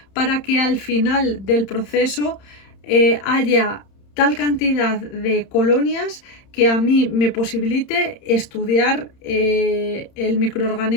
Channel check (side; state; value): right; late; 31 ms